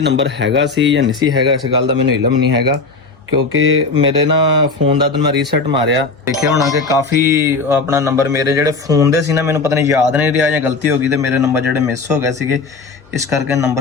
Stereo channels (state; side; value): quieter; right; 4.0 dB